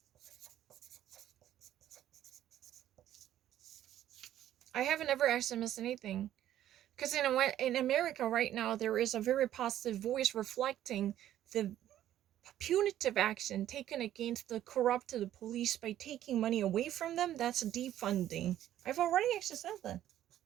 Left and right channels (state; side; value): quieter; left; 12.2 dB